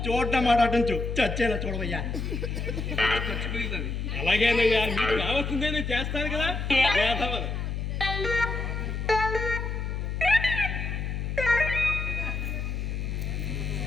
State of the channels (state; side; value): noise; left; hum, 3 dB below the sound